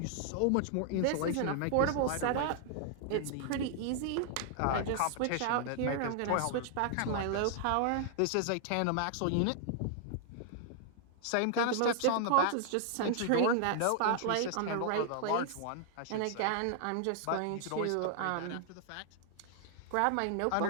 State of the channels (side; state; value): both; different; correlation 0.00